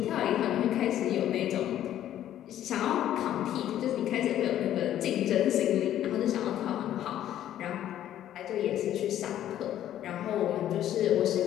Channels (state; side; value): quieter; right; 11.8 dB